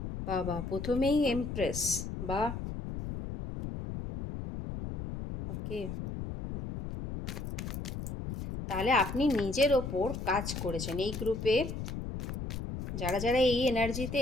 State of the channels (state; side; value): noise; left; rumble, 6 dB below the sound